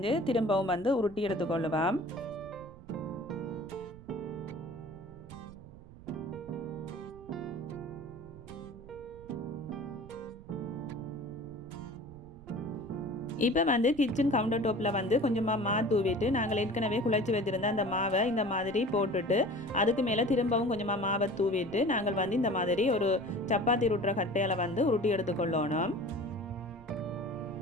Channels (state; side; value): noise; right; rumble, 18 dB below the sound